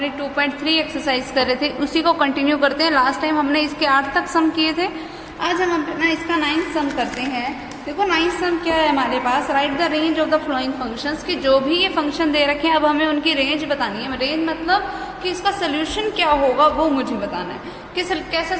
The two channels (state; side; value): identical; both; correlation 1.00